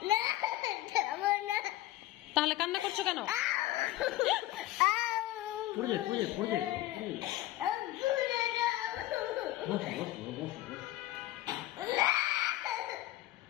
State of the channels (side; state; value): right; quieter; 15.6 dB